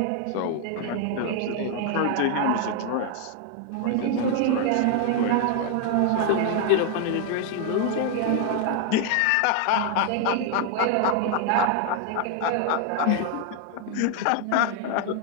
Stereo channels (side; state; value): both; different; correlation 0.00